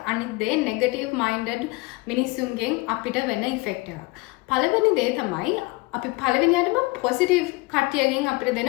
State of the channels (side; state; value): right; quieter; 23.0 dB